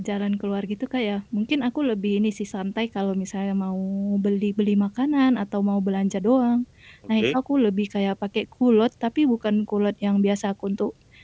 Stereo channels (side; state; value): both; identical; correlation 1.00